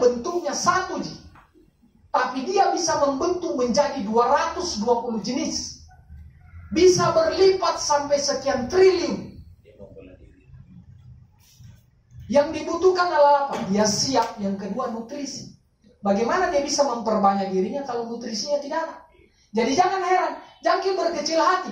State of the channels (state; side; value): identical; both; correlation 1.00